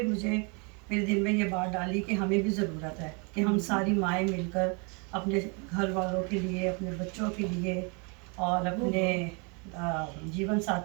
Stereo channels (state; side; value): quieter; left; 33.3 dB